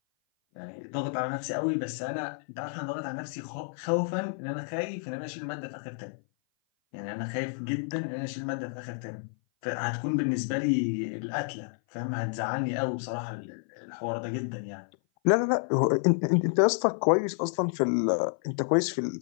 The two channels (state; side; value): silent; right; 56 dB below the other